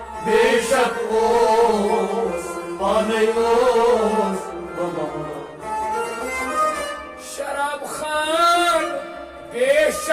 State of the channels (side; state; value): both; identical; correlation 1.00